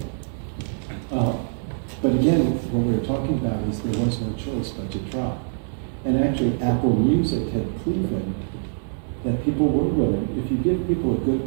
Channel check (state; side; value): silent; left; 63 dB below the other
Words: But again, what we were talking about is there was no choice but to try. And actually, Apple Music had proven that people were willing, if you give people a good